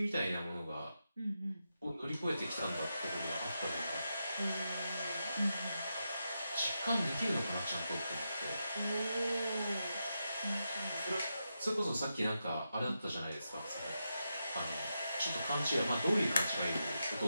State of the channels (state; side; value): inverted; both; correlation -0.87